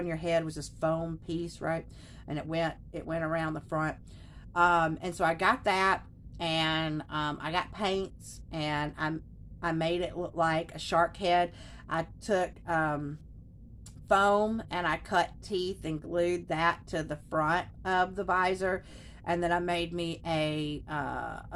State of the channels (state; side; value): identical; both; correlation 1.00